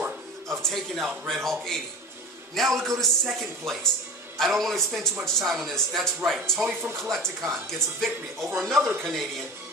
of taking out Red Hawk 80. Now we go to second place. I don't want to spend too much time on this. That's right, Tony from Collecticon gets a victory over another Canadian.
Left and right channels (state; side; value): normal; both; correlation 0.33